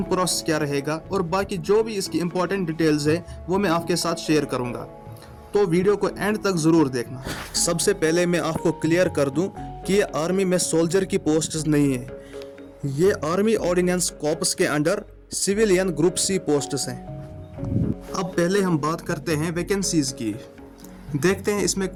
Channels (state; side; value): identical; both; correlation 1.00